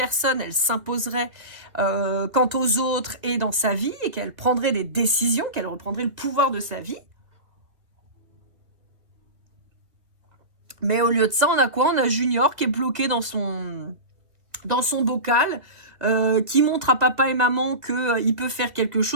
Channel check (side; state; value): left; late; 1.9 ms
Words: elle s'imposerait quant aux autres et dans sa vie, et qu'elle prendrait des décisions, qu'elle reprendrait le pouvoir de sa vie. Mais au lieu de ça, on a quoi? On a Junior qui est bloqué dans son bocal, qui montre à papa et maman qu'il peut faire quelque